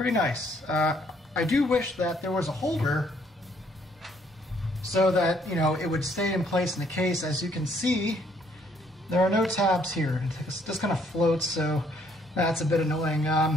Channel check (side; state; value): both; normal; correlation 0.66